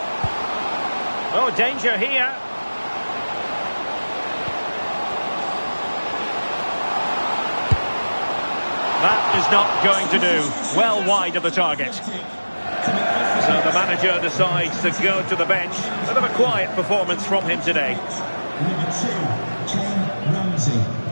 Oh, danger here. That is not going to do. Well wide of the target. So the manager decides to go to the bench. Bit of a quiet performance from him today. Number 2, Ken Ramsey.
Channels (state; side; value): inverted; both; correlation -1.00